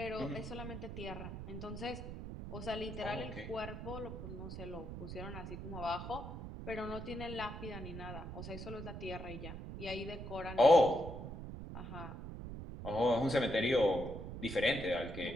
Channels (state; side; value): noise; right; rumble, 8 dB below the sound